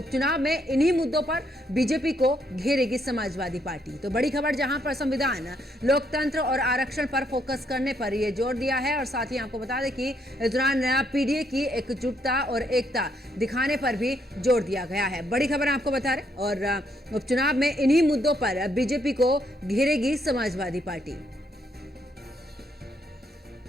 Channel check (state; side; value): normal; both; correlation 0.73